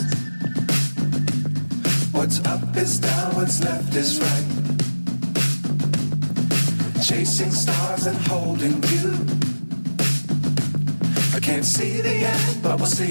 What's up is down, what's left is right. Chasing stars and holding you. I can't see the end, but we'll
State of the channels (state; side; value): inverted; both; correlation -1.00